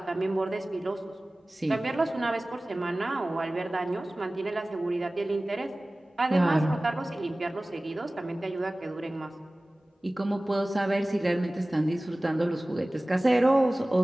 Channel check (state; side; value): normal; both; correlation 0.98